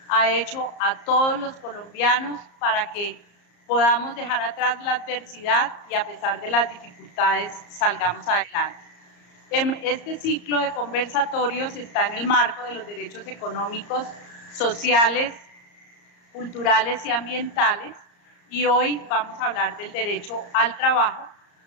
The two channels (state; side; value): late; right; 34 ms